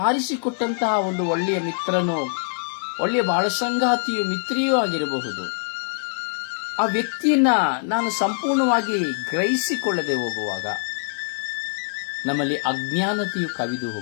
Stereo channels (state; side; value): silent; right; digital silence